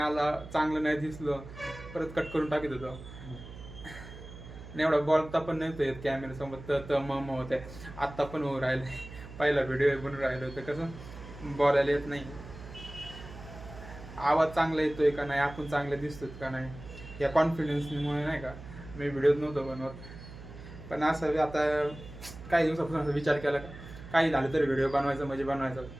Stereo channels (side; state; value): right; noise; hum, 14 dB below the sound